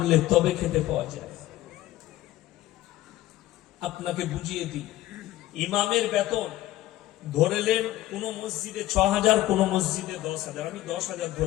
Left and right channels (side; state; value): right; quieter; 15.3 dB